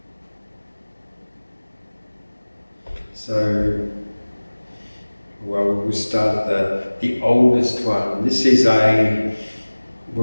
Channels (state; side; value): inverted; both; correlation -1.00